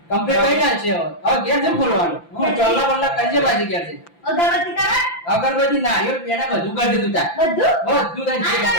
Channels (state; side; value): late; right; 5.9 ms